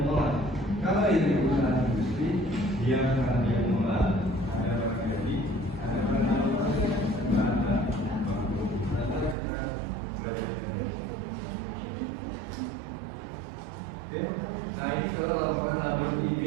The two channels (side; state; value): left; drops out; at 9.3 s